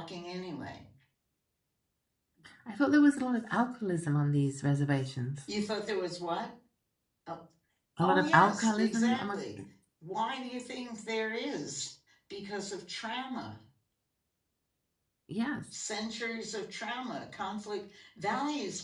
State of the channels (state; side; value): identical; both; correlation 1.00